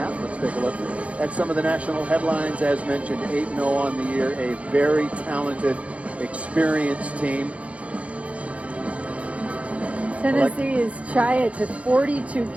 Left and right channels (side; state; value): left; late; 0.064 ms